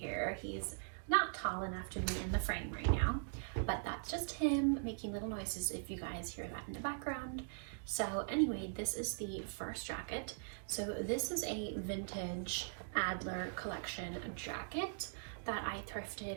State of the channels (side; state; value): left; silent; digital silence